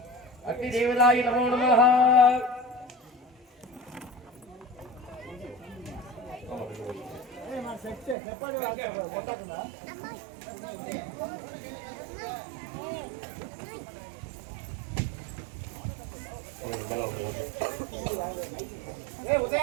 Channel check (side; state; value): left; drops out; at 8.2 s